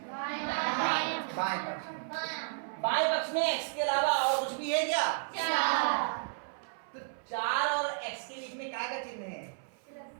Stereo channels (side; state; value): left; silent; 56 dB below the other